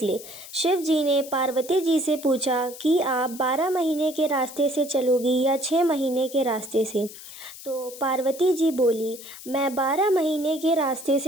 शिव जी ने पार्वती जी से पूछा कि आप 12 महीने के रास्ते से चलोगी या 6 महीने के रास्ते से। तो पार्वती जी बोली, मैं 12 महीने के रास्ते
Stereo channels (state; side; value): noise; left; hiss, 15 dB below the sound